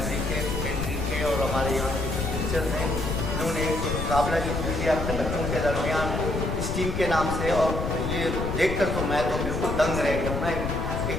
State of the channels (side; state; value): left; noise; rumble, 2 dB below the sound